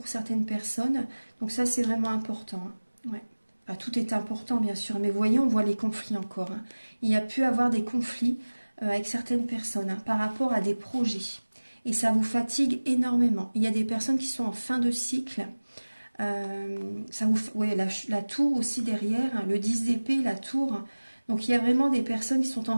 certaines personnes. Donc ça, c'est vraiment important, hein. Ouais. Enfin, tout est important, bien sûr. Mais voyez, on voit les conflits encore, hein. Il y a pu avoir des conflits avec certaines personnes, hein, par rapport à des projets. Et ça vous fatigue énormément. Il y a des personnes qui sont en fin de cycle. Ouais, la tour aussi derrière, hein, le 10 d'épée, la tour. Donc il y a vraiment des personnes qui sont en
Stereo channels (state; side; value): inverted; both; correlation -1.00